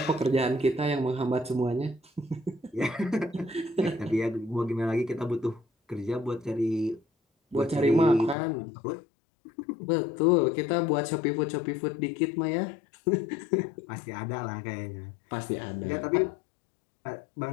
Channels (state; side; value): drops out; right; at 8.3 s